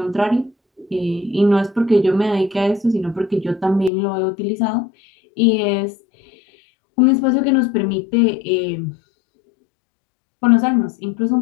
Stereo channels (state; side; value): drops out; right; at 3.9 s